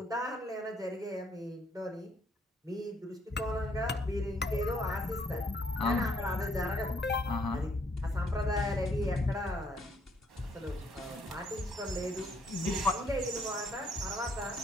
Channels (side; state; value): both; normal; correlation 0.68